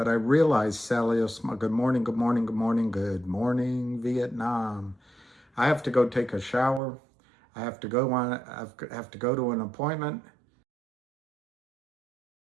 I realized, Sally, good morning, good morning, good morning, good morning, Vietnam. I have to go take a shower. I have to go to an appointment.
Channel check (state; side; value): drops out; left; at 6.8 s